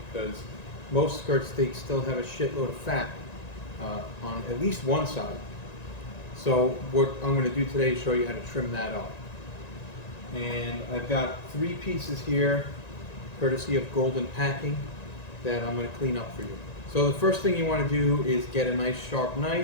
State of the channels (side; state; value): right; late; 1.9 ms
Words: because most skirt steaks still have a shitload of fat on at least one side. So what I'm going to do today is show you how to trim that up. And I've got 3 pieces here, courtesy of Golden Packing, that I'm going to clean up for you. So the first thing you want to do is get a nice sharp